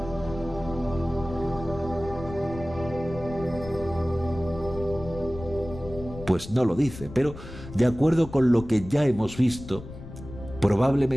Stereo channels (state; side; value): noise; left; rumble, 13 dB below the sound